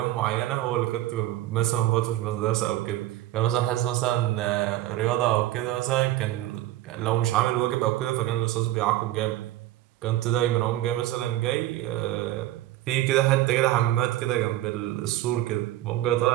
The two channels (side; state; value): left; quieter; 14.7 dB